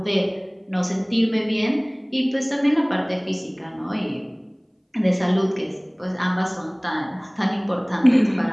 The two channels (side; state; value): both; identical; correlation 1.00